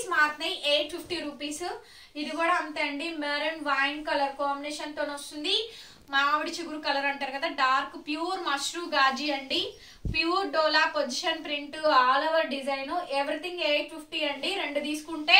మారుతున్నాయి. 850 రూపీస్. ఇది కూడా అంతే అండి. మెరూన్ వైన్ కలర్ కాంబినేషన్ తో వస్తుంది. మామిడి చిగురు కలర్ అంటారు కదా, డార్క్ ప్యూర్ మష్రూ గాజీ అండి. Pure dola position print, all over design. Everything 850 అండి. 2 తీసుకుంటే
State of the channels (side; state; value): both; identical; correlation 1.00